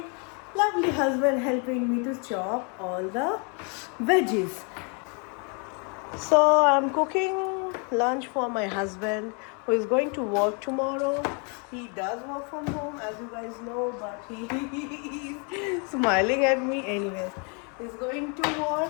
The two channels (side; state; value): right; quieter; 36.1 dB